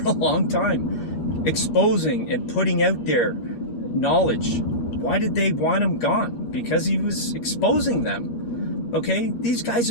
a long time. exposing and putting out their knowledge. Why did they want him gone? Because he was exposing them. Okay, these guys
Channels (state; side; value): late; right; 8.4 ms